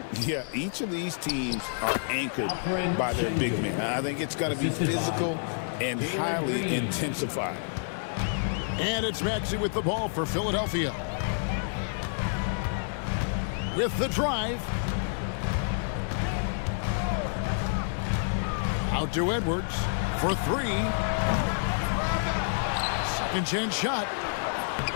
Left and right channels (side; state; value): right; silent; 59 dB below the other